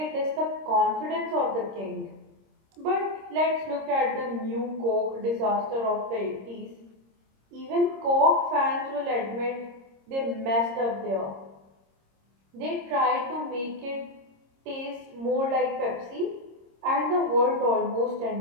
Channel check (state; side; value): late; left; 26 ms